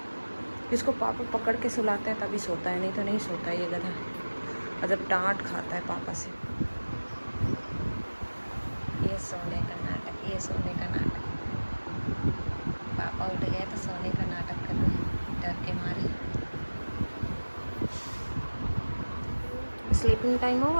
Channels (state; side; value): inverted; both; correlation -1.00